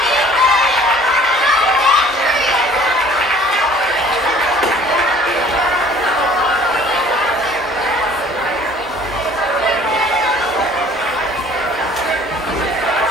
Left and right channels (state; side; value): normal; both; correlation 0.52